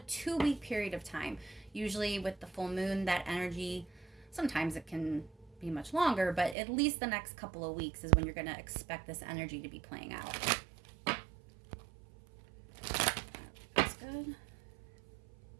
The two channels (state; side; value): drops out; left; at 6.6 s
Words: 2-week period of time. Usually with the full moon, that energy, sometimes it can be much longer, but at least the next couple of weeks is when you're going to expect this energy to be playing out. That's good.